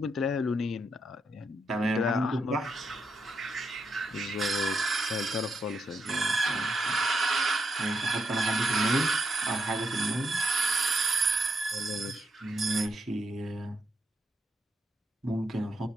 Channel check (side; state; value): both; normal; correlation 0.80